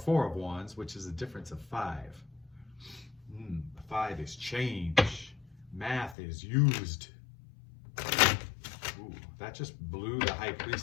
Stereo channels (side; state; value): right; drops out; at 6.2 s